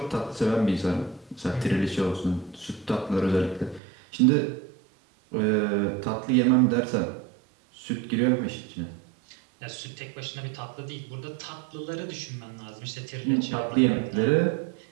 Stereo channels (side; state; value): left; drops out; at 3.8 s